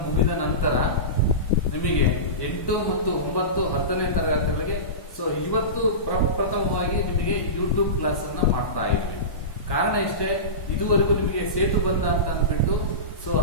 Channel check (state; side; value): late; right; 1.1 ms